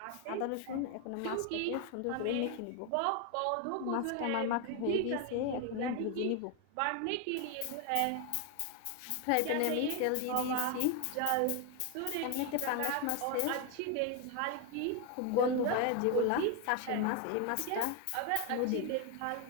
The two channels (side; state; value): both; different; correlation 0.01